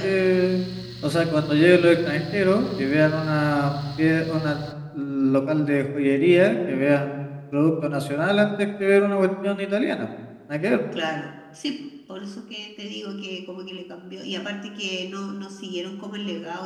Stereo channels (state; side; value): identical; both; correlation 1.00